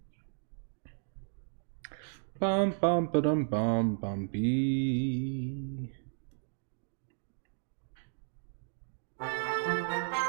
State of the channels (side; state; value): left; silent; digital silence